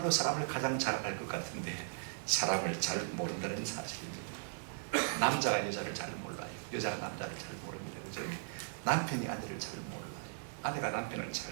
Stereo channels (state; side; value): silent; left; 53 dB below the other